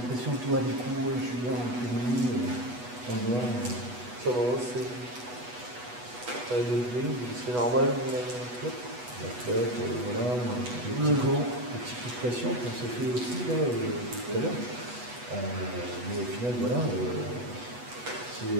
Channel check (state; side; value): late; left; 8.2 ms